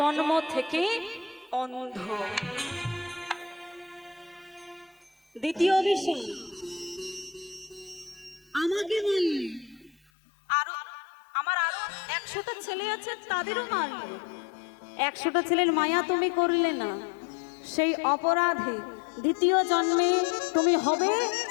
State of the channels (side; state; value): right; drops out; at 10.0 s